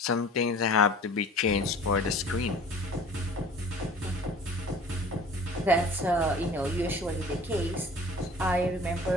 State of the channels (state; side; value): normal; both; correlation 0.46